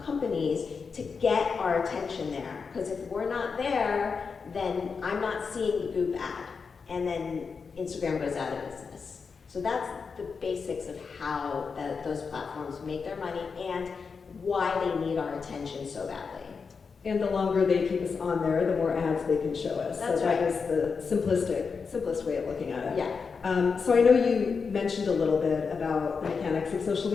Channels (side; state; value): right; quieter; 5.3 dB